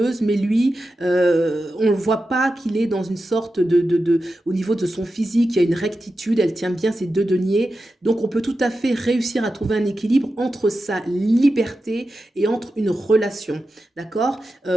mais lui, on ne voit pas qu'il est dans une sorte au niveau de son physique, il y a une rectitude, elle tient bien ses 2 deniers. Donc, on peut tout à fait réussir à trouver un équilibre entre sa liberté et entre une relation. D'accord ?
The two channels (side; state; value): both; normal; correlation 0.91